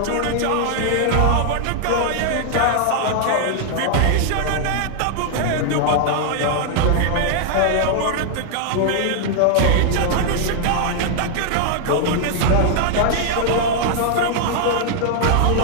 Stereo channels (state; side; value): different; both; correlation -0.01